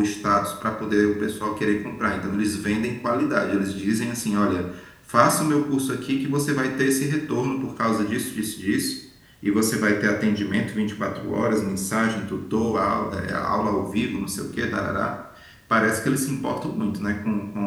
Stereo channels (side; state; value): both; identical; correlation 1.00